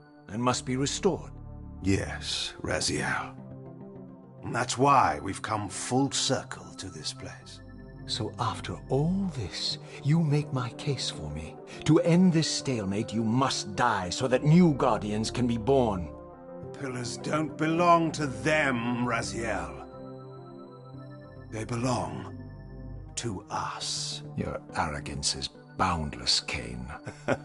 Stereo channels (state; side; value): identical; both; correlation 1.00